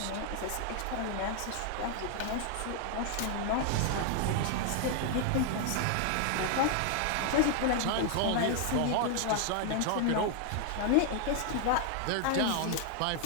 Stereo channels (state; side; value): different; both; correlation 0.00